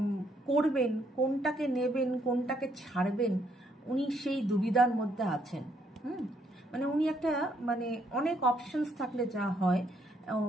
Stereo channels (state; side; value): normal; both; correlation 0.72